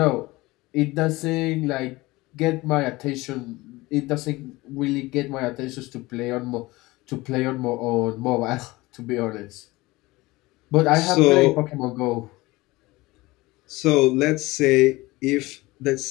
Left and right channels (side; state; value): right; quieter; 20.7 dB